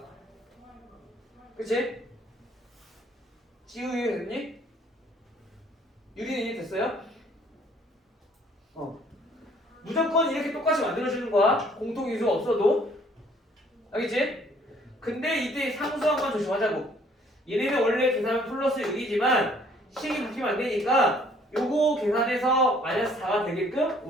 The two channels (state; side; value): normal; both; correlation 0.60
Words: 그치? 지우 됐니? 유리는 이해 됐어요? 무조건 이렇게 똑같이 만들어주는 거야. 공통인수가 없어도. 알겠지? 근데 이때 상수항만 조심하자고. 얘네는 원래 계산은 플러스 6이지만 식이 바뀌면 안 되니까 요거 계산해서 마이너스 4가 되게끔